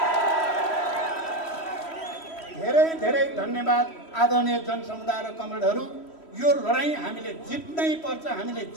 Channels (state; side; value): late; right; 3.1 ms